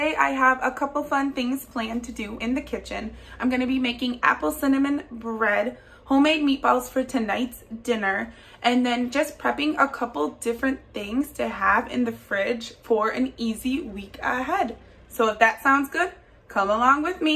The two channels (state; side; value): identical; both; correlation 1.00